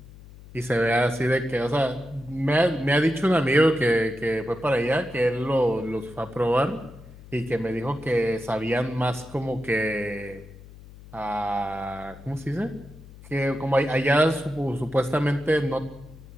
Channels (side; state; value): left; noise; hum, 19 dB below the sound